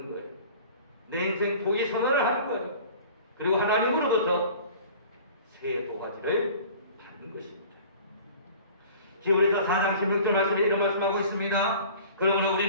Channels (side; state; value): both; inverted; correlation -0.45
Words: 거예요. 내 인생 포기 선언을 하는 거예요. 그리고 하나님으로부터 새 도화지를 받는 것입니다. 히브리서 4장 16절 말씀에 이런 말씀하고 있습니다. 그러므로